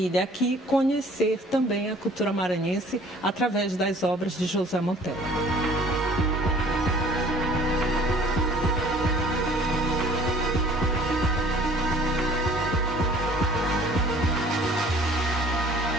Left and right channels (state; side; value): normal; both; correlation 0.52